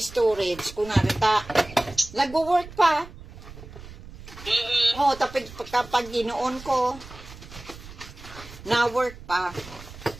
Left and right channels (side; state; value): right; noise; rumble, 16 dB below the sound